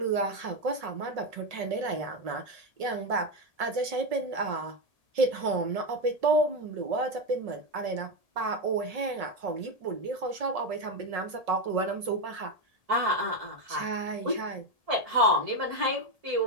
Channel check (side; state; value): left; late; 1.8 ms